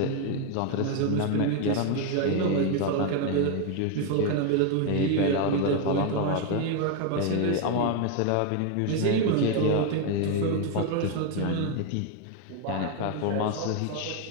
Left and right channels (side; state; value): both; different; correlation 0.01